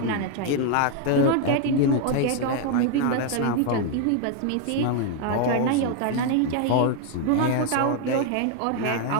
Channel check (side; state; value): both; different; correlation 0.01